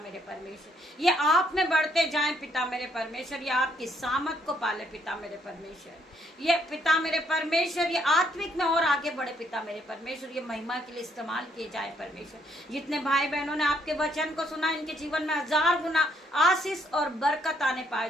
परमेश्वर। ये आप में बढ़ते जाएं पिता मेरे परमेश्वर, ये आपकी सामत को पाले पिता मेरे परमेश्वर। ये पिता मेरे परमेश्वर ये आत्मिक में और आगे बढ़े पिता मेरे परमेश्वर, ये महिमा के लिए इस्तेमाल किए जाए परमेश्वर। जितने भाई बहनों ने आपके वचन को सुना इनके जीवन में 1000 गुना आशीष और बरकत आने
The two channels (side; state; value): both; normal; correlation 0.70